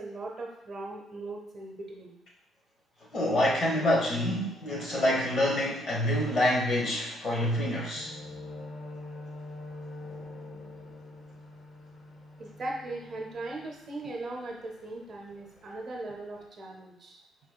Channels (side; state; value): both; normal; correlation 0.69